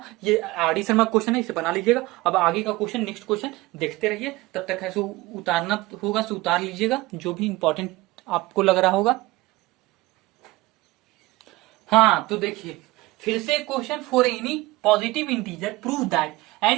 ये आर डी शर्मा क्वेश्चन है, इसे बना लीजिएगा। अब आगे का क्वेश्चन, नेक्स्ट क्वेश्चन देखते रहिए, तब तक ऐसे उतारना होगा तो उतार लीजिएगा जो भी इंपॉर्टेंट आपको लग रहा होगा। हाँ तो देखिए फिर से question, for any positive integer prove that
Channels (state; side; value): quieter; left; 20.0 dB